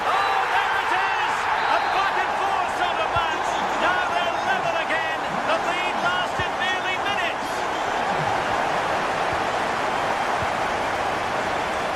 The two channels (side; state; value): both; identical; correlation 1.00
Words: Oh, there it is! A back and forth sort of match. Now they're level again. The lead lasted nearly minutes.